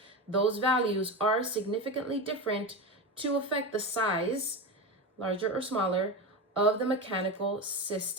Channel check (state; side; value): normal; both; correlation 0.21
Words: those values are significantly different to affect the size, larger or smaller, of the mechanical